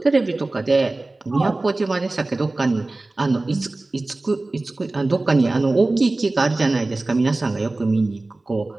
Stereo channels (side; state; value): left; quieter; 3.0 dB